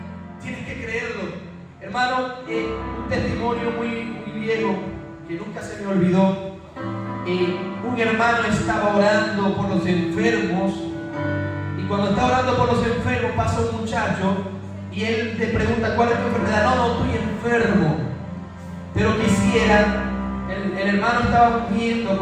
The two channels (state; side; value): identical; both; correlation 1.00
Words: Tienes que creerlo. Hermano, un testimonio muy viejo que nunca se me olvidó. Un hermano estaba orando por los enfermos, y cuando está orando por los enfermos pasa un muchacho y él le pregunta: ¿cuál es tu enfermedad? No, estoy enfermo, pero quisiera. El hermano estaba ungiendo